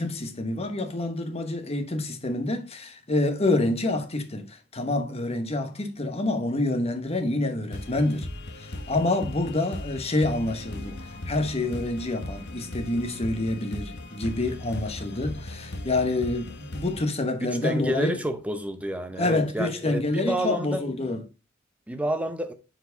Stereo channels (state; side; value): normal; both; correlation 0.59